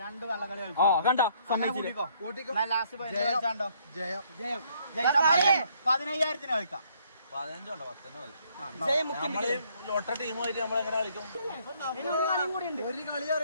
2 കള്ളക്കളി കണ്ടോ? സമ്മതിച്ചില്ലോ. ലാസ്റ്റ് 15,000 കളിക്കാം. 15 ഒട്ട ടീമായിട്ട് നമ്മളെങ്ങനെ കളിക്കും? ഒരു കളി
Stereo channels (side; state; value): both; inverted; correlation -0.67